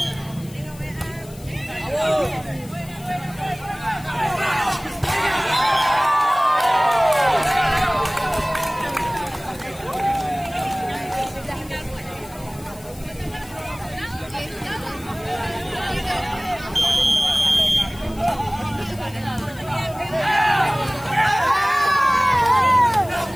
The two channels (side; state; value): left; noise; hiss, 21 dB below the sound